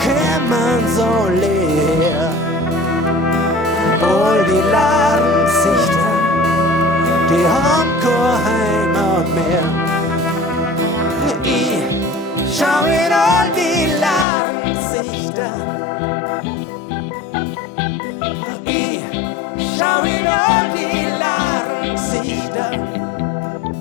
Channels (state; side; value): drops out; right; at 14.2 s